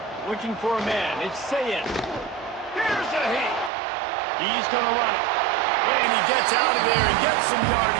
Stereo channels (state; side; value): drops out; left; at 3.7 s